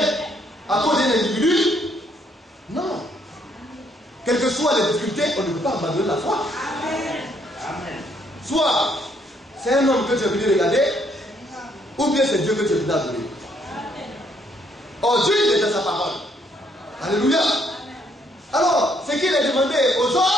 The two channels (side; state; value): both; normal; correlation 0.69